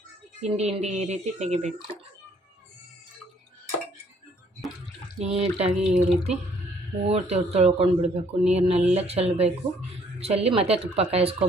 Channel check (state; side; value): normal; both; correlation 0.63